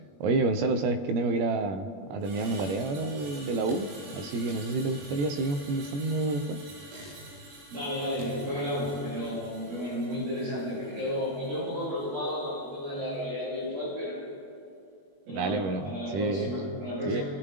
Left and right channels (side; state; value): left; late; 21 ms